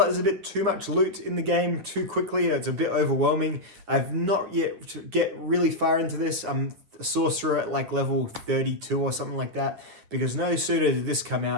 there's a bit too much loot in the game too quickly. It's a bit overwhelming. I've not yet to get really far into this. I'm a sorcerer at like level 32 or something like that, because no sooner did this come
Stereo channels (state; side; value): late; left; 9.7 ms